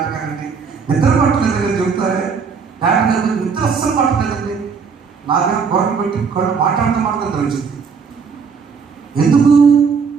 నిద్ర పట్టలేదు అని చెబుతారే. నాటకాలు నిద్ర అస్సలు పట్టలేదండి. నాకేమో గొడవ పెట్టి మాట్లాడటం వచ్చింది. ఎందుకు?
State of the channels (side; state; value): left; quieter; 5.7 dB